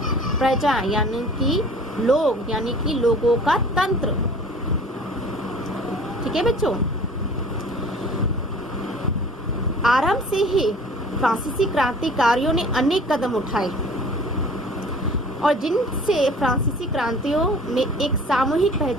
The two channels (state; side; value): normal; both; correlation 0.47